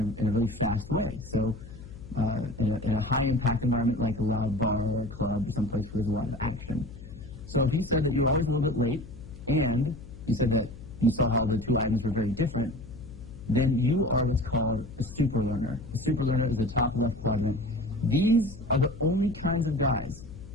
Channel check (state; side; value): noise; left; hum, 16 dB below the sound